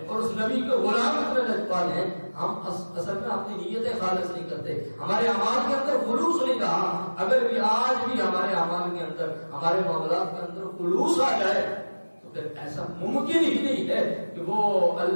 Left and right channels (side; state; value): both; inverted; correlation -1.00